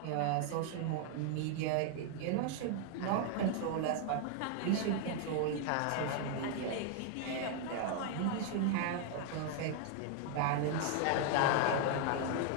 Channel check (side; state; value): both; different; correlation 0.00